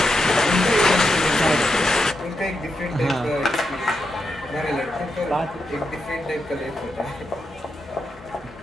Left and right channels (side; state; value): both; normal; correlation 0.85